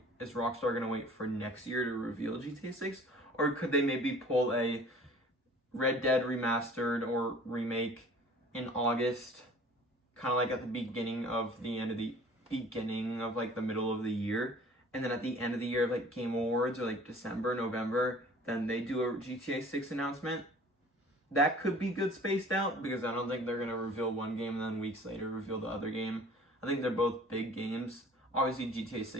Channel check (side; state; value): both; normal; correlation 0.48